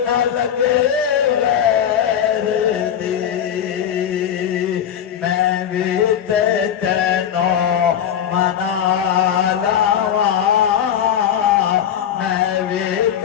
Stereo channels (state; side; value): quieter; right; 9.3 dB